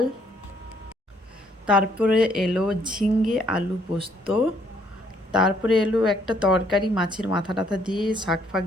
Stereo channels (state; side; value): normal; both; correlation 0.67